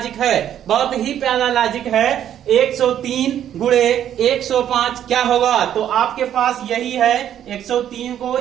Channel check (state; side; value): quieter; left; 10.4 dB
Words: है, बहुत ही प्यारा लॉजिक है। 103 गुणे 105 क्या होगा, तो आपके पास यही है, 103 को